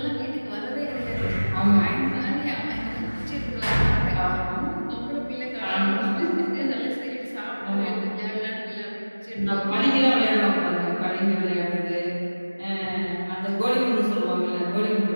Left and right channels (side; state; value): both; inverted; correlation -1.00